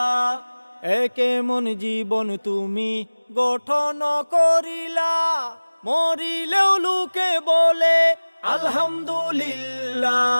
কেমন জীবন তুমি গঠন করিলা, মরিলেও লোকে বলে আলহামদুলিল্লাহ।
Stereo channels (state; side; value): inverted; both; correlation -1.00